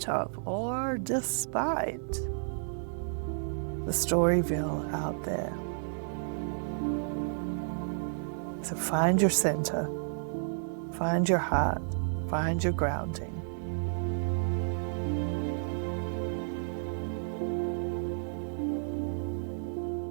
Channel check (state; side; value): silent; left; digital silence